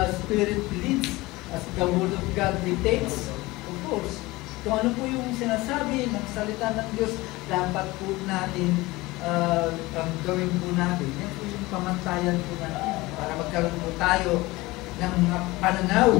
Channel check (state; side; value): quieter; right; 20.7 dB